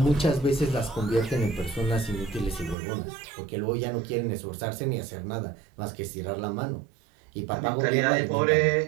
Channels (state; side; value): drops out; left; at 2.8 s